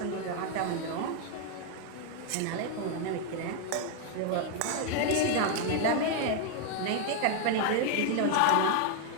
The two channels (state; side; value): different; both; correlation 0.00